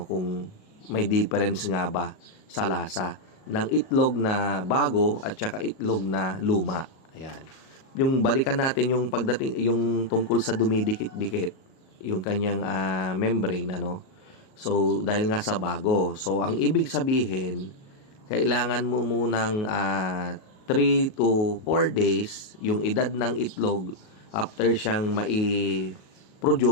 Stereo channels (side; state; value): right; late; 37 ms